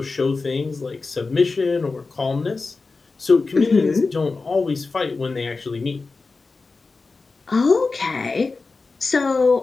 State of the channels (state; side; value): quieter; right; 4.0 dB